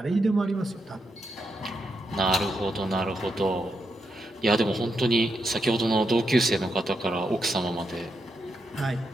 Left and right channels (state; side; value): normal; both; correlation 0.83